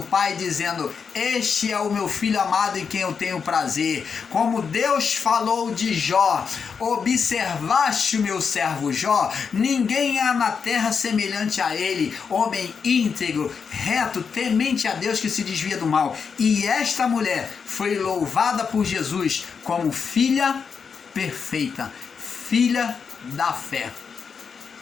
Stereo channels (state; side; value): quieter; right; 6.0 dB